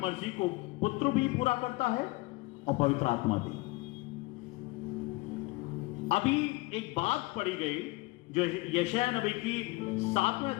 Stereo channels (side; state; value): right; quieter; 22.4 dB